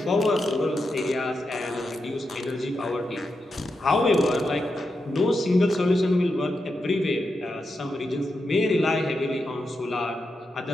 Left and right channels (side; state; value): both; normal; correlation 0.87